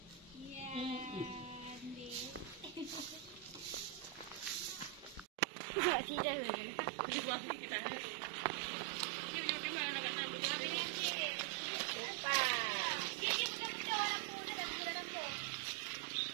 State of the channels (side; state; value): left; drops out; at 5.2 s